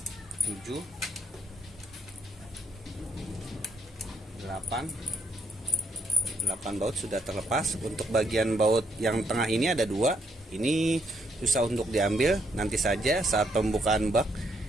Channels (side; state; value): both; normal; correlation 0.73